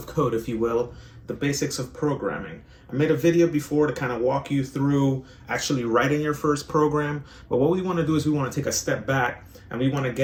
code, if you will, the basics of programming. I made a video before to kind of walk you through actually writing your first program, but what we want to do is we want to take a step back and we want to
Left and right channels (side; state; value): both; identical; correlation 1.00